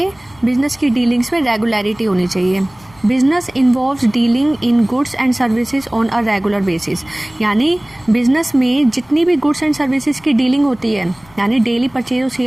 बिजनेस की डीलिंग्स में रेगुलरिटी होनी चाहिए। Business involves dealing in goods and services on a regular basis. यानी बिजनेस में जितनी भी गुड्स एंड सर्विसेज की डीलिंग होती है, यानी डेली परचेज और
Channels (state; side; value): noise; left; rumble, 28 dB below the sound